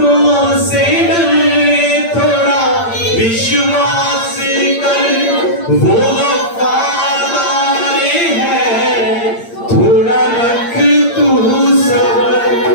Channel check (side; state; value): right; late; 8.7 ms